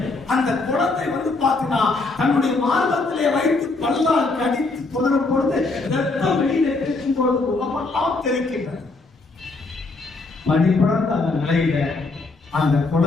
அந்த குழந்தை பார்த்தீங்கன்னா தன்னுடைய மார்பகத்திலே வைத்து பல்லால் கடித்து தொடரும் பொழுது ரத்தம் வெளியில இருக்கும் பொழுது உடம்பெல்லாம் தெரிக்கின்றது. மணிப்படர்ந்த அந்த நிலையில அந்த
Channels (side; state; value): right; quieter; 3.5 dB